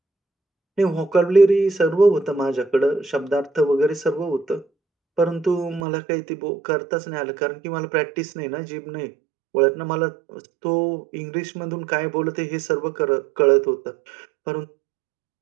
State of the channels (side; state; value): left; drops out; at 5.8 s